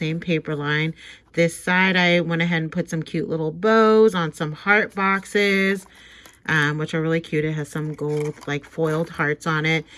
paper line. This side I went ahead and put some cute little bows on some heart boxes, which are really cute. It has some gold like foiled hearts on it.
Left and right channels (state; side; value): identical; both; correlation 1.00